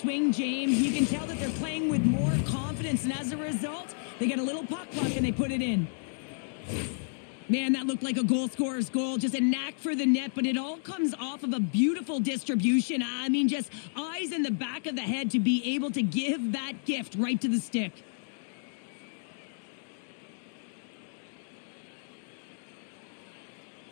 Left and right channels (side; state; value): right; silent; digital silence